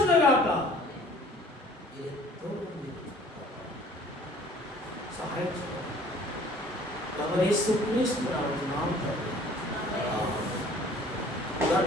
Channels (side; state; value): both; normal; correlation 0.52